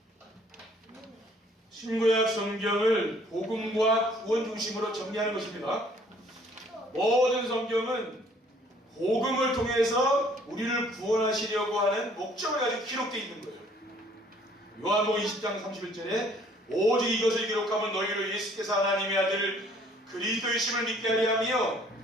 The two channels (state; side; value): normal; both; correlation 0.59